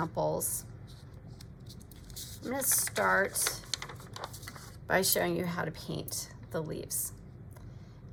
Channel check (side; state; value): both; identical; correlation 1.00